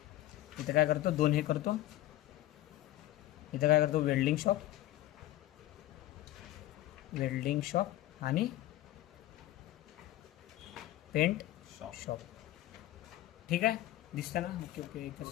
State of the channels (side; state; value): right; quieter; 15.3 dB